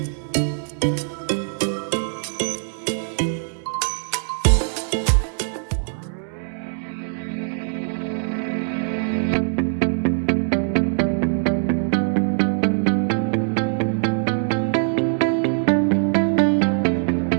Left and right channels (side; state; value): left; silent; 64 dB below the other